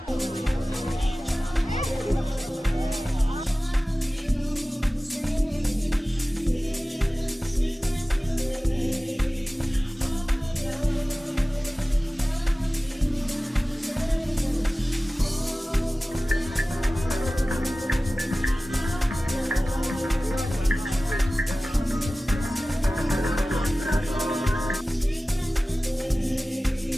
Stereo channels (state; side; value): normal; both; correlation 0.97